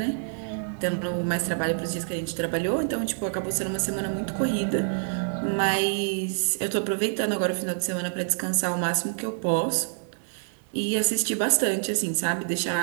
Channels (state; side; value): silent; left; digital silence